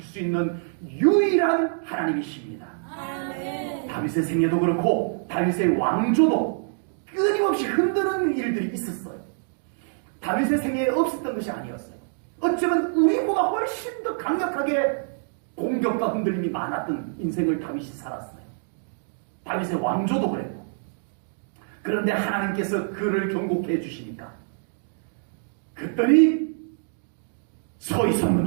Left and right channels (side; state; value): left; silent; digital silence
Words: 수 있는 유일한 하나님이십니다. 다윗의 생애도 그렇고 다윗의 왕조도 끊임없이 흔드는 일들이 있었어요. 다윗의 생애에 없었던 것이 아니었어요. 어쩌면 우리보다 훨씬 더 강력하게 공격과 흔들림이 많았던 인생을 다윗이 살았어요. 다윗의 왕조도 그랬고. 그런데 하나님께서 그를 견고케 해주시니까 그들이 서 있었는